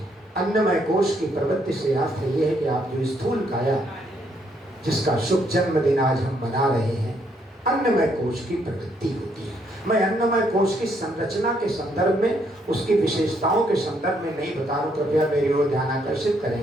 अन्नमय कोश की प्रवृत्ति से अर्थ ये है कि आप जो स्थूल काया, जिसका शुभ जन्मदिन आज हम मना रहे हैं, अन्नमय कोश की प्रवृत्ति होती है। मैं अन्नमय कोश की संरचना के संदर्भ में, उसकी विशेषताओं के संदर्भ में नहीं बता रहा हूं, कृपया मेरी ओर ध्यान आकर्षित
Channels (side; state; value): both; normal; correlation 0.72